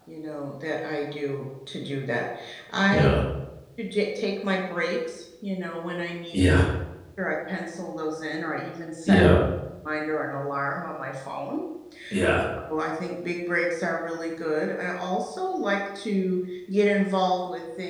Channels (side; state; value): both; identical; correlation 1.00